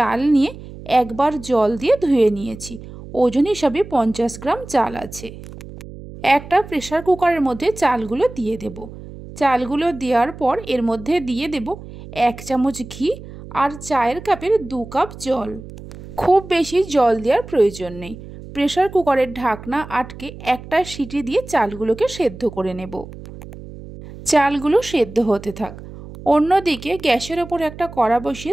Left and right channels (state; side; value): noise; right; hum, 15 dB below the sound